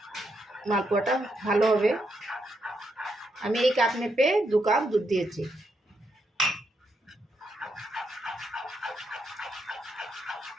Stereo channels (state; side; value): normal; both; correlation 0.80